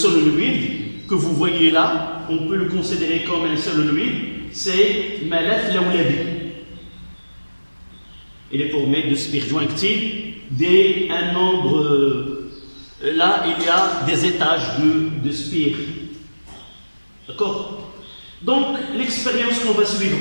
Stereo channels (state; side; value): inverted; both; correlation -1.00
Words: que vous voyez là, on peut le considérer comme un solenoïde, c'est ملف لولبي. Il est formé de spires jointives d'un nombre. Là, il y a des étages de spires. D'accord? Donc, l'expérience qu'on va suivre